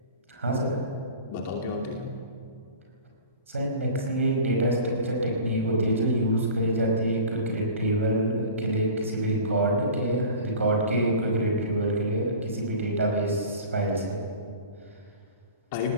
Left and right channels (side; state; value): both; inverted; correlation -0.39